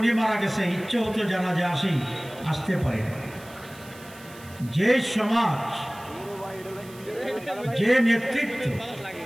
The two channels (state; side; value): noise; right; hiss, 21 dB below the sound